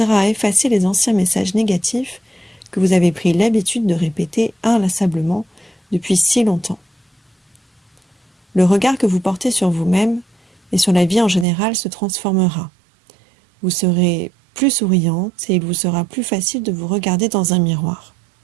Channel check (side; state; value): left; drops out; at 11.5 s